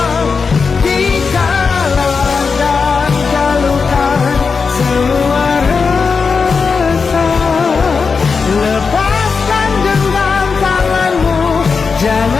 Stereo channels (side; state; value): right; quieter; 5.1 dB